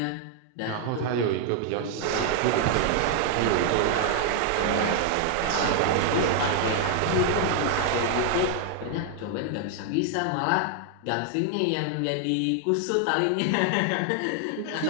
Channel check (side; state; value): both; different; correlation 0.00